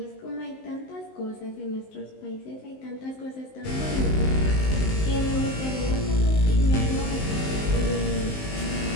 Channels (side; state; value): right; late; 19 ms